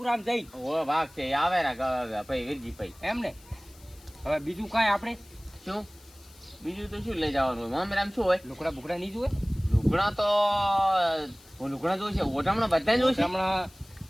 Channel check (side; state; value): left; noise; hiss, 25 dB below the sound